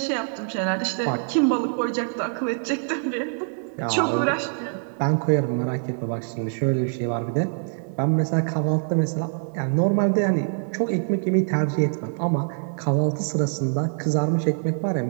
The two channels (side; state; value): left; silent; digital silence